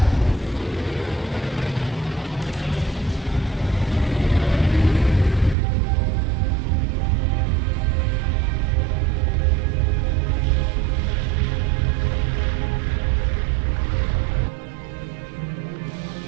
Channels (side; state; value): left; drops out; at 5.6 s